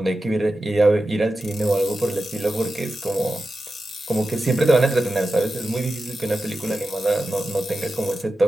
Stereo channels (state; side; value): normal; both; correlation 0.92